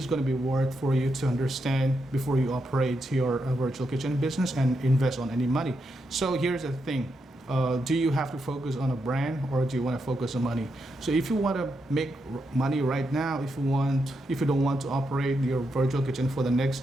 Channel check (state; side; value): normal; both; correlation 0.83